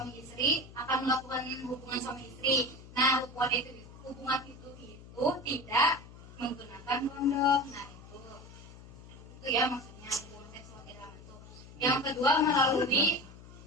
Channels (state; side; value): noise; left; hum, 18 dB below the sound